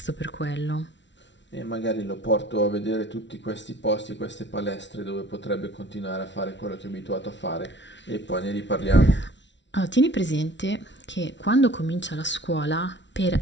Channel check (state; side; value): late; right; 0.52 ms